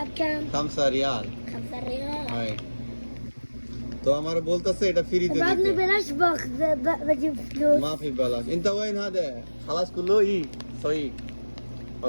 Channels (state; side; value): inverted; both; correlation -1.00